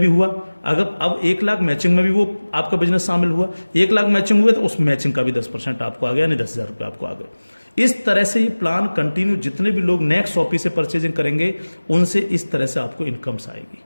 हुआ। अगर अब 1 लाख मैचिंग में भी वो आपका बिजनेस शामिल हुआ, 1 लाख मैचिंग हुए तो उस मैचिंग का भी 10% आपको आ गया, यानी 10,000 रुपये आपको आ गए। इस तरह से ये प्लान कंटिन्यू, जितने भी लोग नेक्स्ट शॉपी से परचेजिंग करेंगे उनसे इस तरह से आपको इनकम्स आएगी।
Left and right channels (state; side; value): inverted; both; correlation -1.00